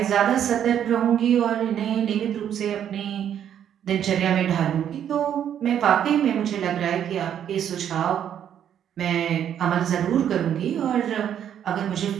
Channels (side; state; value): left; quieter; 9.5 dB